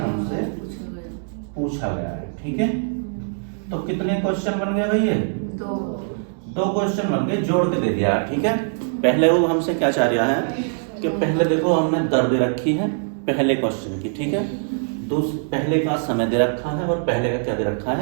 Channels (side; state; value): left; silent; digital silence